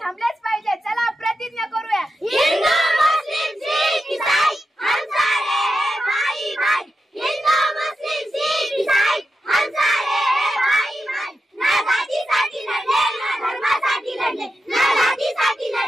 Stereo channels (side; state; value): both; normal; correlation 0.89